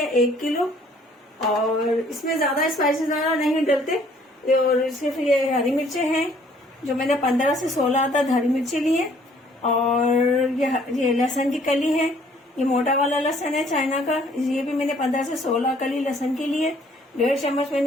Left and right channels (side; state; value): both; normal; correlation 0.60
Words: 1 किलो। और इसमें ज्यादा स्पाइसेस ज्यादा नहीं डलते। और सिर्फ ये हरी मिर्चें हैं जो मैंने 15 से 16 तक हरी मिर्ची ली है। और ये लहसुन की कली है। ये मोटा वाला लहसुन है चाइना का, ये भी मैंने 15 से 16 कली लहसुन की ली है। 1.5 चम्मच